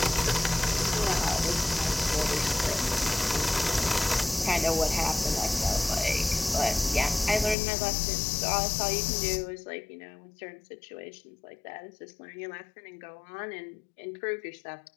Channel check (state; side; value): drops out; right; at 7.6 s